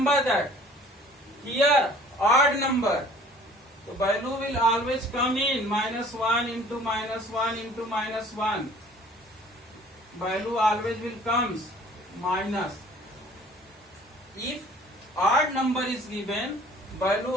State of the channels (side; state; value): both; normal; correlation 0.52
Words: that here odd number, the value will always come in minus 1 into minus 1 into minus 1. Value always will comes minus. If odd number is given, value